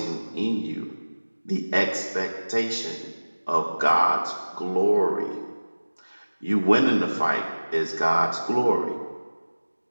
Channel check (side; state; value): both; inverted; correlation -1.00